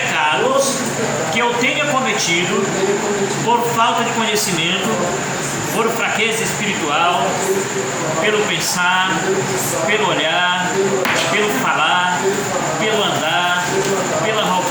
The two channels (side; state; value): both; identical; correlation 1.00